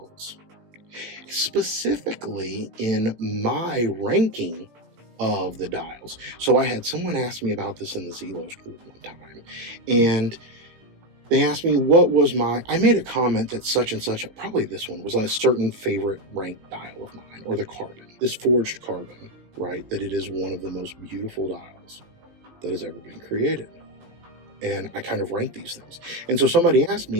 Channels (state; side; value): late; left; 17 ms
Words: specifically in my ranking of the dials. So I had someone ask me about this in the Zelos group one time, and they asked me what was I made a comment that such and such, probably this one, was a certain favorite ranked dial of mine, or the carbon, this forged carbon, right? That it is one of the most beautiful dials that has ever been created. And I kind of rank these things. And so somebody asked